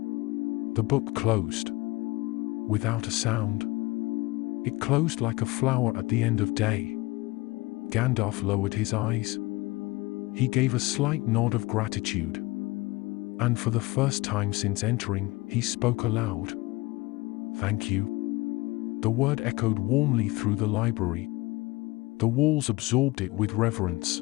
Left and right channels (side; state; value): right; quieter; 22.3 dB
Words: The book closed. Without a sound. It closed like a flower at the end of day. Gandalf lowered his eyes. He gave a slight nod of gratitude. And for the first time since entering, he spoke aloud. "Thank you." The word echoed warmly through the library. The walls absorbed it with reverence.